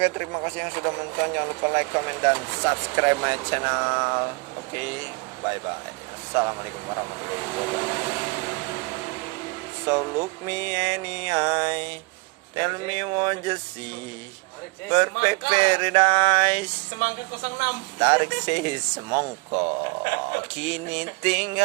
terima kasih yang sudah menonton. Jangan lupa like, comment, dan subscribe my channel. Oke, bye bye. Assalamualaikum warahmatullahi wabarakatuh. So look me any eye, tell me what you see. Perfect paradise. Semangka 06. Tarik si semongko, kini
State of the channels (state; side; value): quieter; left; 28.2 dB